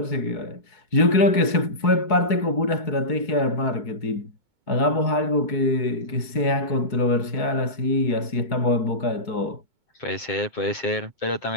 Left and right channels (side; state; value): left; late; 2.2 ms